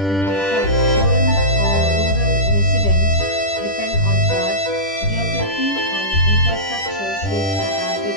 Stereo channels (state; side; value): late; right; 10 ms